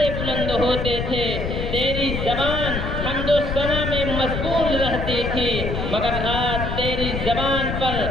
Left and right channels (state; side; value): noise; left; rumble, 3 dB below the sound